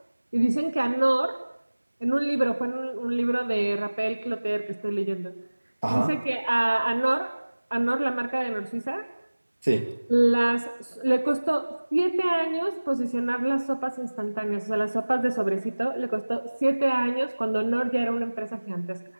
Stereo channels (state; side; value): inverted; both; correlation -1.00